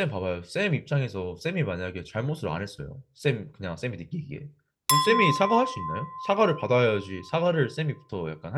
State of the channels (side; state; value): both; identical; correlation 1.00